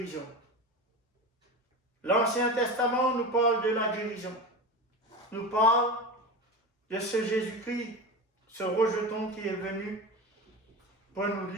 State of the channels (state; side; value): normal; both; correlation 0.26